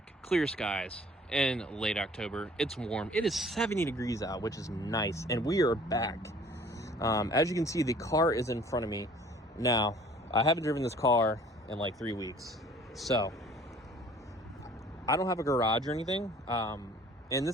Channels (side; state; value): both; normal; correlation 0.52